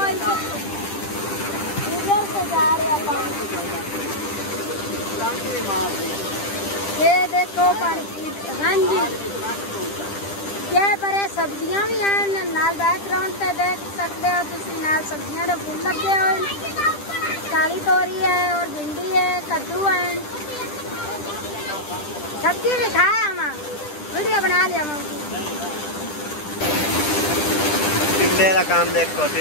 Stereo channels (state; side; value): late; right; 10 ms